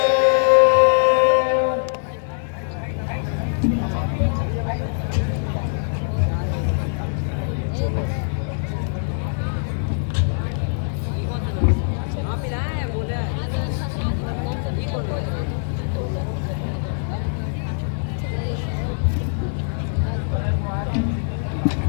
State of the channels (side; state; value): right; silent; 64 dB below the other